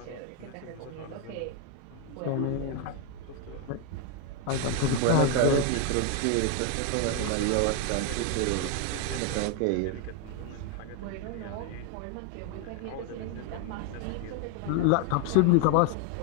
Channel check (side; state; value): both; different; correlation 0.01